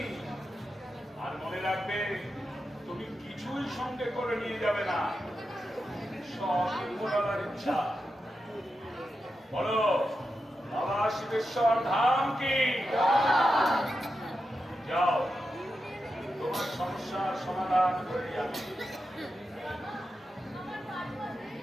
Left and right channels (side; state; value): both; normal; correlation 0.89